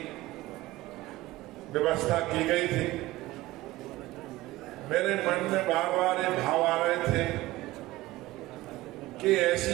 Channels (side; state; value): left; quieter; 17.9 dB